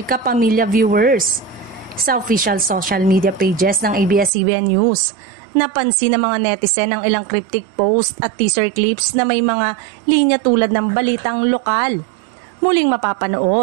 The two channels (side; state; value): left; drops out; at 4.3 s